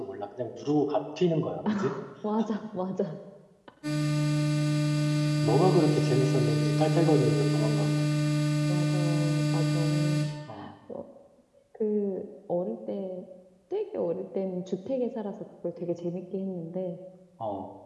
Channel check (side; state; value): both; identical; correlation 1.00